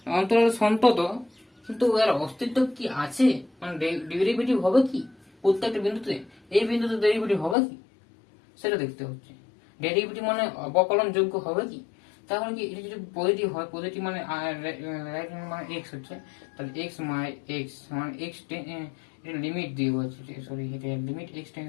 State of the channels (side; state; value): right; drops out; at 7.6 s